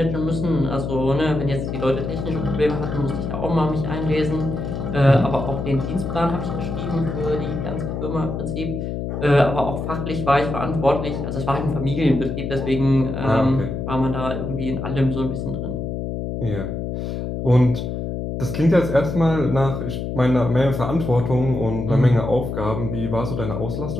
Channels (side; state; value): left; noise; hum, 4 dB below the sound